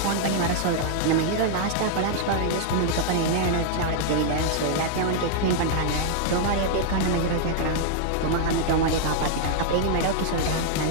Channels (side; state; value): both; different; correlation -0.01